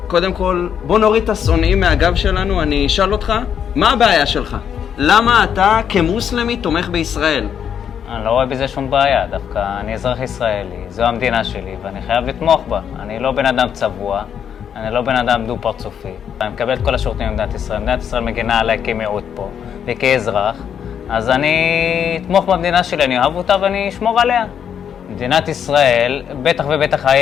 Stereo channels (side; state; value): right; quieter; 8.3 dB